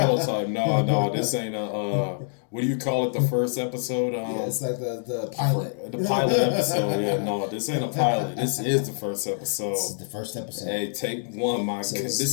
prototype. No, this ain't what do you call it? The first episode? Yeah, it's like the pilot. The pilot episode. Yeah, no, this ain't a pilot. This is the first episode. This is the first episode. Hey, take one, my. So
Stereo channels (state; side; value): silent; right; digital silence